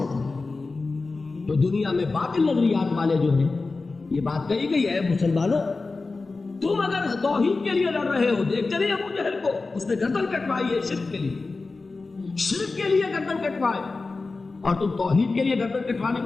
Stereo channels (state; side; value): quieter; right; 3.8 dB